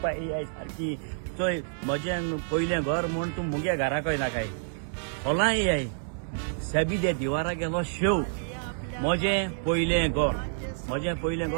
ए आय सारकी चोय म्हजें पयलें घर म्हूण तूं मुगे घराक येना काय होला ए आय साबी दे दिवारा गेलो शेव म्हजें पयलें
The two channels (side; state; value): left; silent; 59 dB below the other